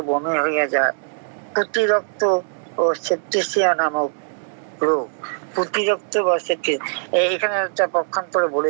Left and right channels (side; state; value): left; silent; 65 dB below the other